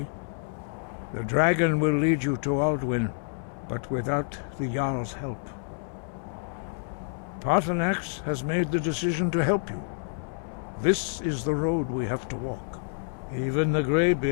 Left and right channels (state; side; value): silent; right; 59 dB below the other